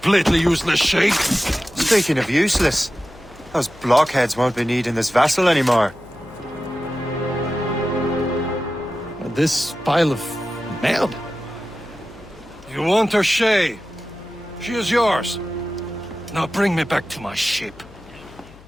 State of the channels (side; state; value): left; noise; hum, 23 dB below the sound